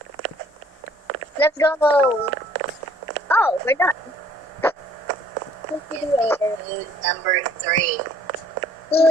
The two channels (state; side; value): normal; both; correlation 0.59